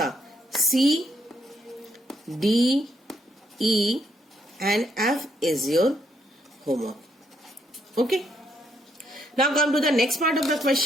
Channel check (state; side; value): normal; both; correlation 0.74